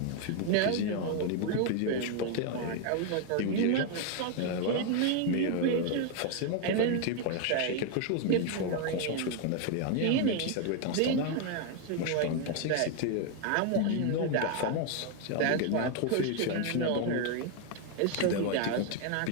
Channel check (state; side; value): different; both; correlation 0.01